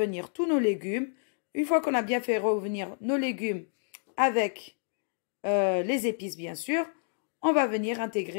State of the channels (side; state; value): right; silent; 58 dB below the other